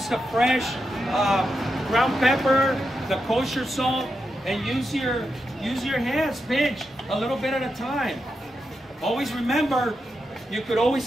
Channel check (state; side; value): normal; both; correlation 0.86